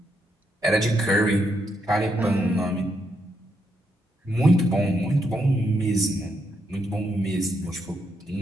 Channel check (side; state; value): both; normal; correlation 0.79